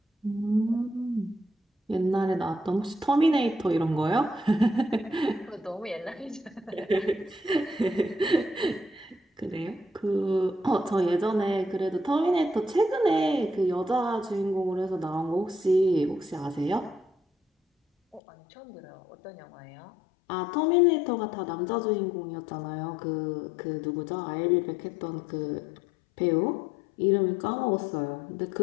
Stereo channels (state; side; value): drops out; right; at 18.2 s